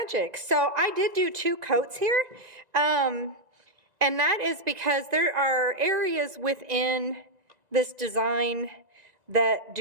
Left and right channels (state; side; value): late; left; 1.9 ms